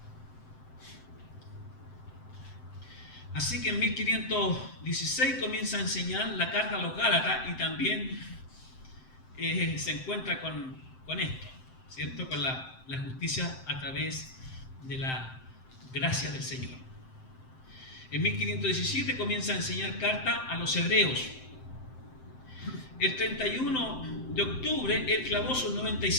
Así que en 1516 comienza a enseñar la carta a los Gálatas y también se encuentra con esto, ¿cierto? Con la justicia a través de la gracia del Señor. En 1517 comienza a enseñar carta a los hebreos. El 31 de octubre él clavó sus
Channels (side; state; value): right; late; 7.7 ms